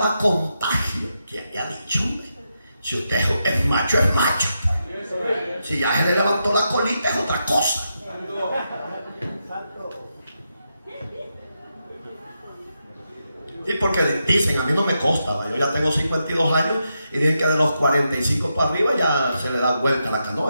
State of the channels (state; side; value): inverted; both; correlation -0.85